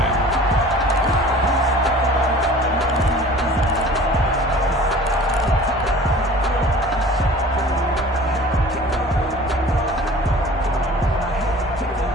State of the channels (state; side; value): normal; both; correlation 0.45